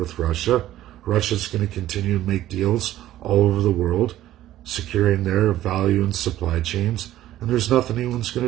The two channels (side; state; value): left; quieter; 13.8 dB